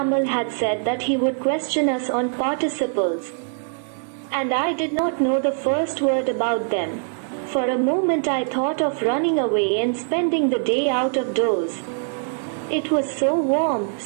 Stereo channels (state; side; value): silent; left; 56 dB below the other